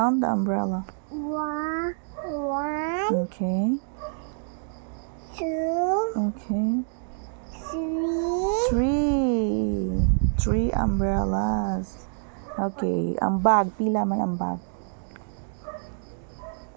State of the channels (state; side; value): silent; left; digital silence